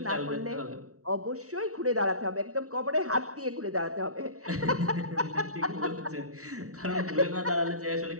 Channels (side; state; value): left; late; 0.64 ms